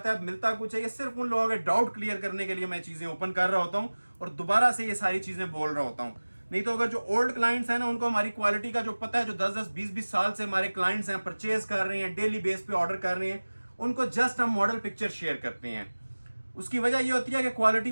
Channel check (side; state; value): both; inverted; correlation -1.00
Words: है मिलता कुछ है, ये सिर्फ उन लोगों के डाउट क्लियर करने के लिए मैं चीजें ओपन कर रहा होता हूँ और दोबारा से ये सारी चीजें बोल रहा होता हूँ। नहीं तो अगर जो ओल्ड क्लाइंट्स हैं ना, उनको हमारी क्वालिटी का जो पता है, जो 10-10, 20-20 साल से हमारे क्लाइंट्स हैं, परचेज कर रहे हैं, डेली बेस पे ऑर्डर कर रहे हैं, उनको जस्ट हम मॉडल पिक्चर शेयर करते हैं। उसकी वजह ये होती है कि क्वालिटी